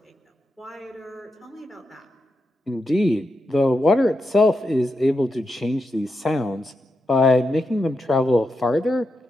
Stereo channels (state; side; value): normal; both; correlation 0.86